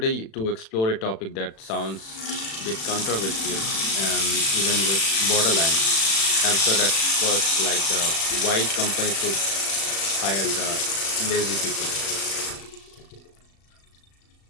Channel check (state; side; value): late; right; 36 ms